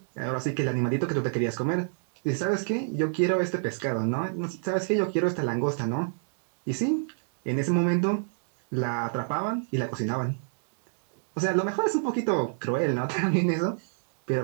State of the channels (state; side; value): silent; left; digital silence